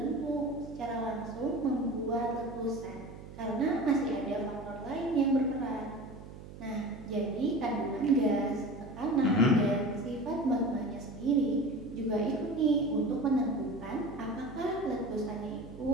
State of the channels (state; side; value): noise; right; hum, 15 dB below the sound